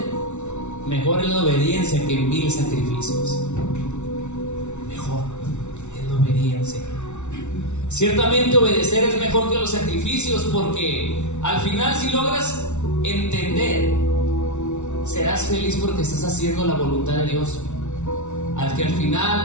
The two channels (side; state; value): right; late; 0.82 ms